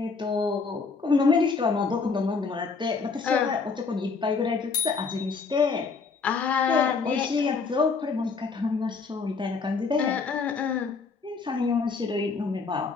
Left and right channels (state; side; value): quieter; right; 4.8 dB